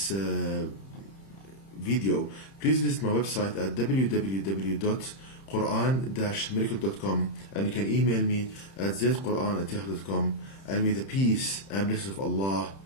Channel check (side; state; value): right; late; 31 ms